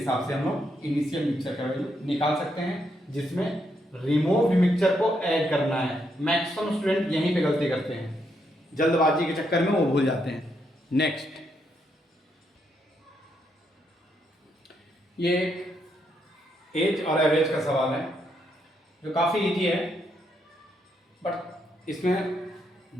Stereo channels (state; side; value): normal; both; correlation 0.78